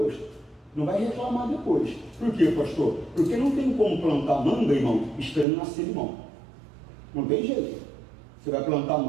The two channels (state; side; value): drops out; left; at 5.5 s